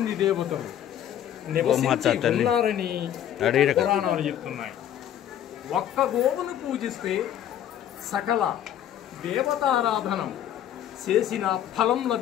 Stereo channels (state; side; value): quieter; right; 10.6 dB